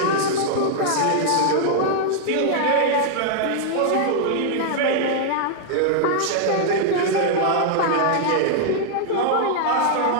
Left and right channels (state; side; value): different; both; correlation -0.01